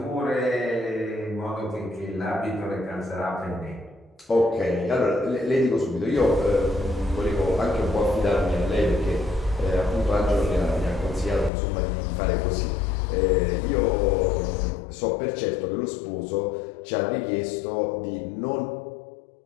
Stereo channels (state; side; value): drops out; right; at 11.5 s